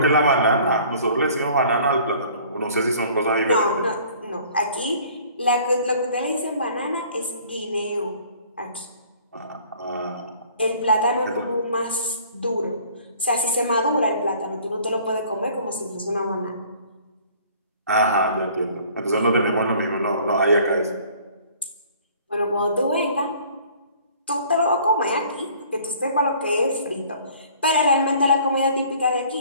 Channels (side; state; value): both; inverted; correlation -0.52